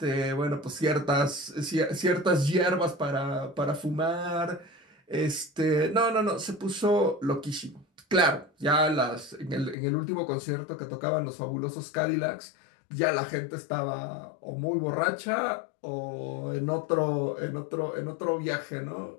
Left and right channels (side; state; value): right; drops out; at 9.8 s